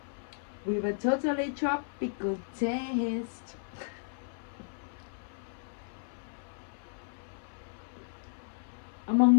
with a totally tropical taste.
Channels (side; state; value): right; silent; 55 dB below the other